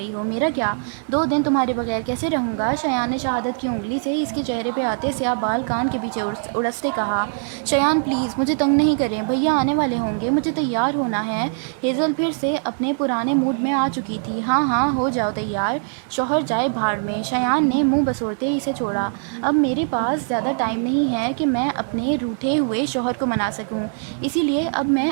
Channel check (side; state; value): left; silent; digital silence